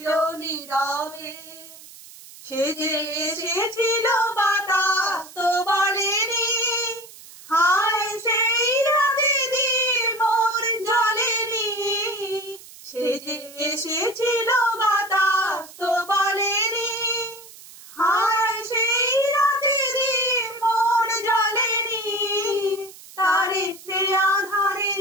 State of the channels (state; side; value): noise; right; hiss, 19 dB below the sound